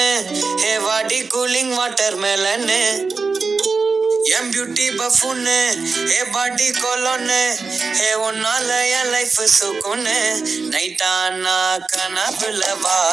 ஹே வாடி கூலிங் வாட்டர் மெலன்னு என் பியூட்டி பஃபுன்னு ஹே பாடி கொலோன்னு ஹே உன்னால என் லைஃப் சுக்குன்னு நைட்டானா கனவுல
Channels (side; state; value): left; quieter; 4.5 dB